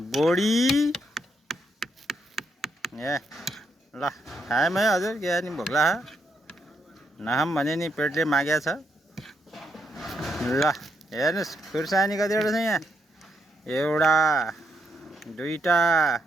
बोडी। ल खायौँ है हजुर, के नि भोक लाग्यो। नखाऊँ भने नि पेटले मागेको छ। ल हेर्नुहोस् खुर्सानी कतिवटा छ यहाँ। एउटा, दुईटा,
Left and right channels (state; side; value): normal; both; correlation 0.78